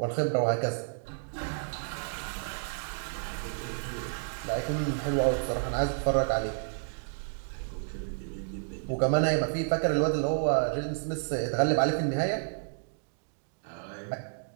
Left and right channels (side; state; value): left; silent; digital silence